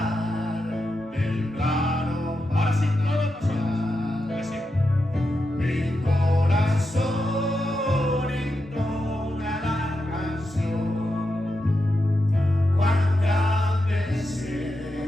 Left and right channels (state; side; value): normal; both; correlation 0.87